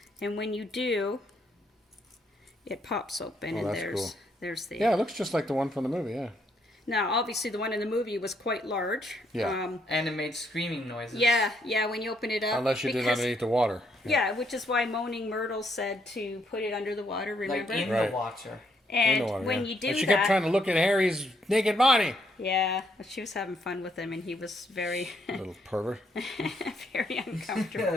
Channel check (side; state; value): both; normal; correlation 0.73